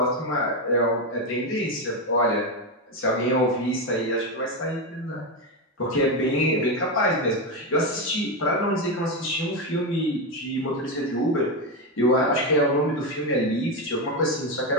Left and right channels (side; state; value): both; normal; correlation 0.10